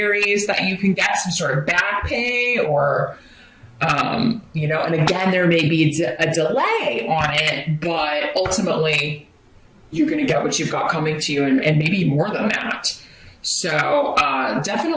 that you can get some sort of back pay or And again, there may be a delay on it, but ultimately you're going to get what you've got coming to you, and maybe more than that. So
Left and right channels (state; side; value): identical; both; correlation 1.00